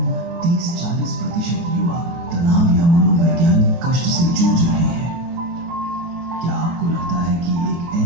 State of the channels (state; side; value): late; left; 23 ms